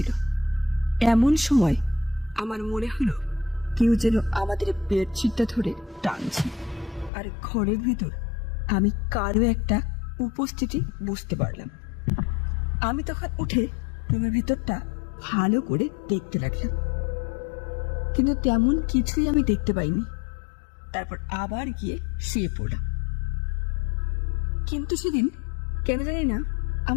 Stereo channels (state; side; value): drops out; right; at 7.1 s